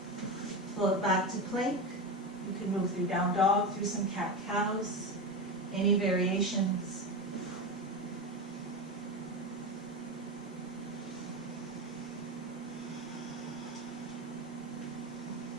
Float back to plank. You can move through down dog, through some cat-cows. Any variations.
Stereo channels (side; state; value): both; normal; correlation 0.19